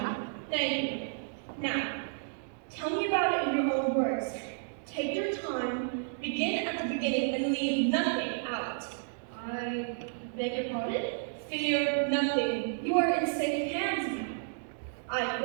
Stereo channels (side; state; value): left; silent; digital silence